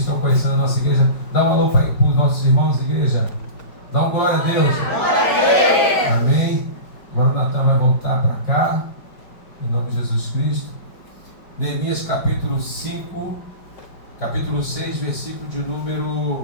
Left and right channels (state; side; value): late; right; 5.1 ms